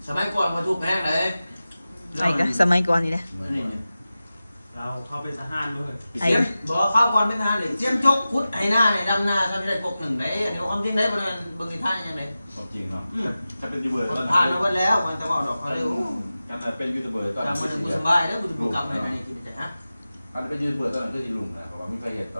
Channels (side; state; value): both; inverted; correlation -0.95